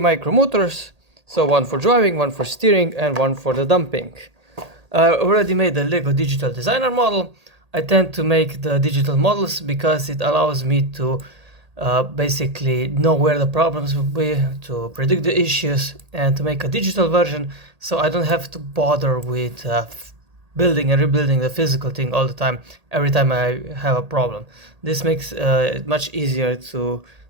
so one for driving, one for steering and one for the dumping. I already made a Lego digital designer model. I tend to make the digital models because it allows me to basically know where the problems will be, to predict the issues, and to make a digital version so I don't have to bother with building and rebuilding the physical thing all the time every time I have a problem. This makes it much easier to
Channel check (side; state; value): left; late; 1.8 ms